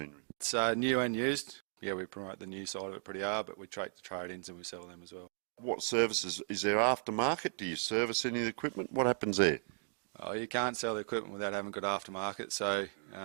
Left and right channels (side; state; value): left; silent; digital silence